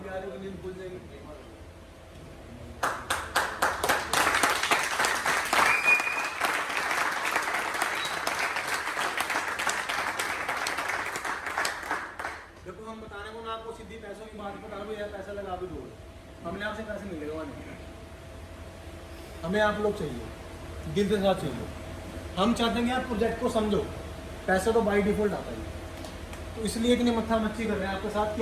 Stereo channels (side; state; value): both; identical; correlation 1.00